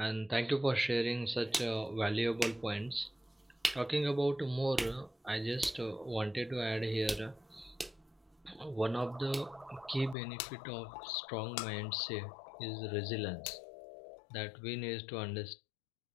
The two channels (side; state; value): right; drops out; at 10.2 s